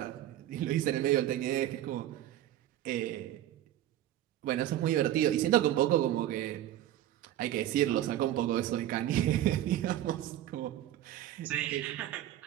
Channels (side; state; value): left; quieter; 12.9 dB